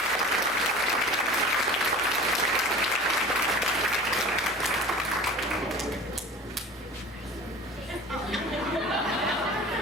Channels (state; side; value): normal; both; correlation 0.40